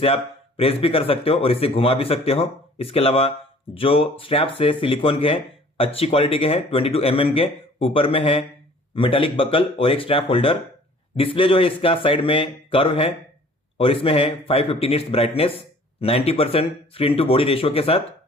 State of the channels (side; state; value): both; normal; correlation 0.52